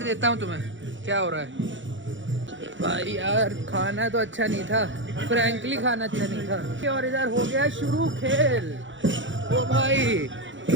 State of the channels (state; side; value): late; left; 0.55 ms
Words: देता हूँ तुम्हें क्या हो रहा है। भाई यार खाना तो अच्छा नहीं था, फ्रैंकली खाना अच्छा नहीं था। और इधर हो गया शुरू खेल। ओ भाई